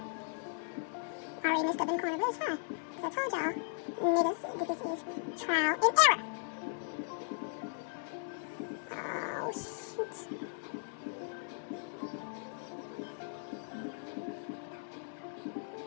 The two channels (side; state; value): right; silent; digital silence